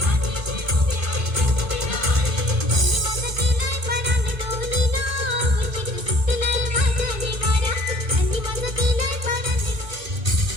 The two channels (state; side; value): late; left; 2.5 ms